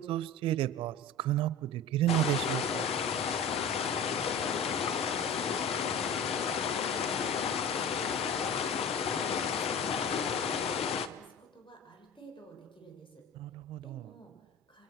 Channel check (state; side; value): normal; both; correlation 0.33